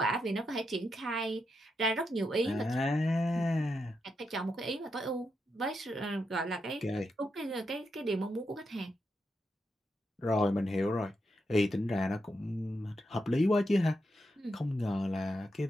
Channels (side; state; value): both; normal; correlation 0.84